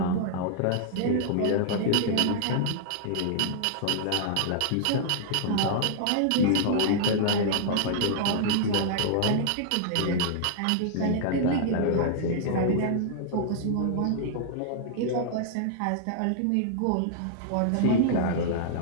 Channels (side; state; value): both; different; correlation -0.01